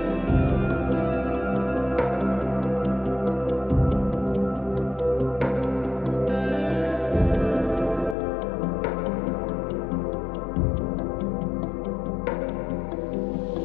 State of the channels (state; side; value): drops out; right; at 8.2 s